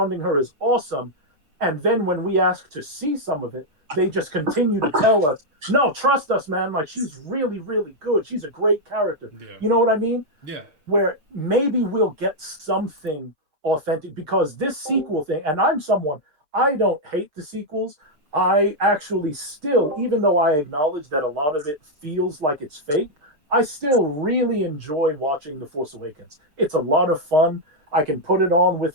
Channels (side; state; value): left; late; 6.6 ms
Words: her is awesome. And then when we ask to see some of it, they just continue to tell us, no, trust us, man. Like, she's really, really good. She's a great character. Yeah. You know what I mean? Yeah. Where maybe we'll get something authentic, because this sequel thing, and I'm someone, I don't hate the sequels. I actually still, even though I acknowledge that a lot of it feels like it's fake, I still really enjoy watching The Force Awakens. It's a lot of fun. I can put it on with